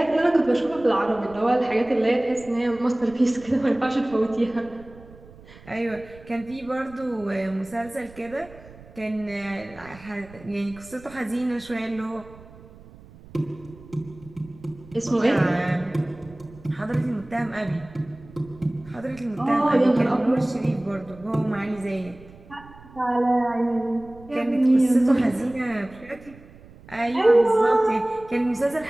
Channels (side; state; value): right; noise; rumble, 21 dB below the sound